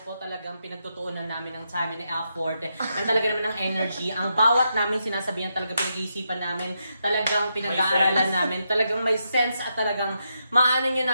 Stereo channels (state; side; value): inverted; both; correlation -0.83